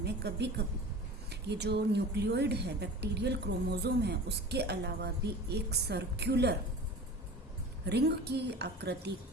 कभी कभी ये जो न्यूक्लियोइड है, बैक्टीरियल क्रोमोसोम है, उसके अलावा भी एक सर्कुलर रिंग की आकृति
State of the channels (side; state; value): both; normal; correlation 0.37